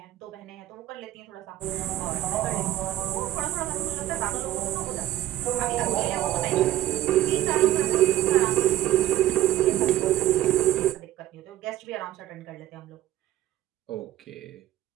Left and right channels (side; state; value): left; quieter; 13.9 dB